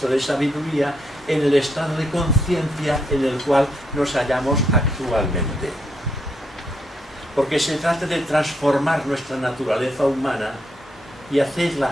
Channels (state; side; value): normal; both; correlation 0.77